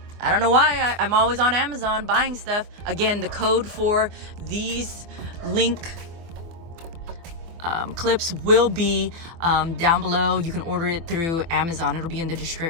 I don't know why. I'm always on Amazon buying stuff. Again, the code for these LinQ clips will be down below. You can order it through Amazon. It'll be in the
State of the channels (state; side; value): late; left; 24 ms